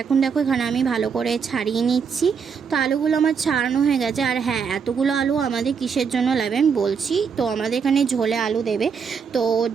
এখন দেখো এখানে আমি ভালো করে ছাড়িয়ে নিচ্ছি। তো আলুগুলো আমার ছাড়ানো হয়ে গেছে। আর হ্যাঁ, এতগুলো আলু আমাদের কিসের জন্য লাগবে আমি বলছি। তো আমাদের এখানে ঝোলে আলু দেবে, তো ওর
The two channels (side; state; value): left; quieter; 6.3 dB